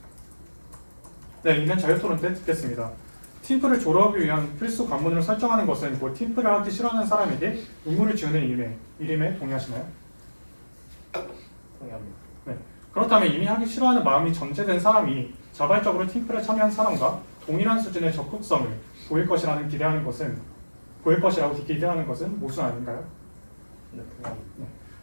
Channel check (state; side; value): inverted; both; correlation -1.00